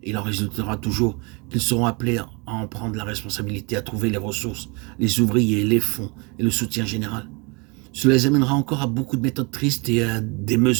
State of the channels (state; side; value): quieter; left; 30.0 dB